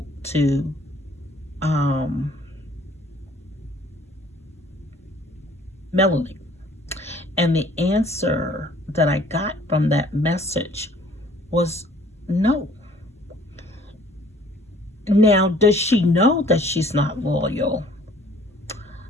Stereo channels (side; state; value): both; normal; correlation 0.55